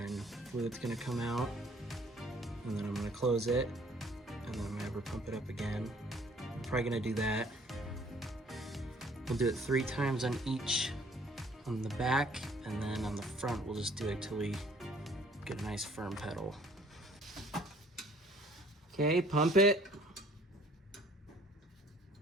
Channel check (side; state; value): both; normal; correlation 0.57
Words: fluid's gonna come out, and then I'm gonna close it, and then I'm gonna have her pump it up again. I'm probably gonna do that. We'll do it 3 times on each, on the back, and then on the front we'll just do it till we get a nice firm pedal. Okay, pump it.